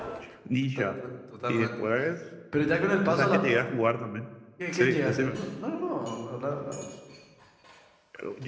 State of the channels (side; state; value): both; identical; correlation 1.00